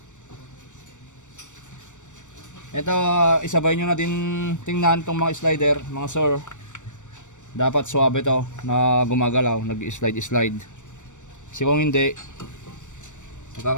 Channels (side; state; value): right; late; 0.85 ms